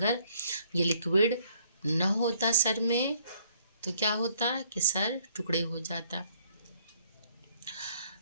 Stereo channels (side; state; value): both; inverted; correlation -0.64